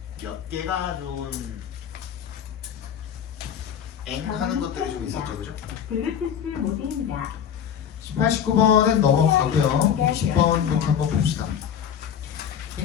몇 개가 좀 하는 것들이 좀 있었죠, 그죠? 블루투스 모드입니다. 18, 19번은 넘어가고요. 20번 이렇게 한번 봅시다.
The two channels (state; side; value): quieter; right; 8.5 dB